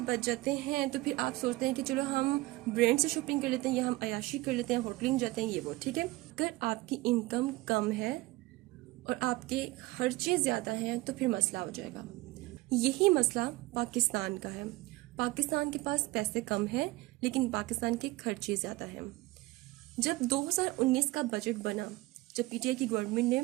बच जाते हैं तो फिर आप सोचते हैं कि चलो हम ब्रांड से शॉपिंग कर लेते हैं या हम अयाशी कर लेते हैं, होटलिंग जाते हैं, ये वो, ठीक है। अगर आपकी इनकम कम है और आपके खर्चे ज्यादा हैं तो फिर मसला हो जाएगा। यही मसला पाकिस्तान का है। पाकिस्तान के पास पैसे कम है लेकिन पाकिस्तान के खर्चे ज्यादा हैं। जब 2019 का बजट बना, जब पीटीआई की गवर्नमेंट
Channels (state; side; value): quieter; left; 20.2 dB